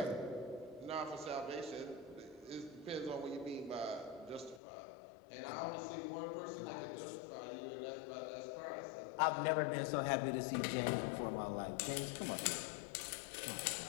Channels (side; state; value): right; drops out; at 4.6 s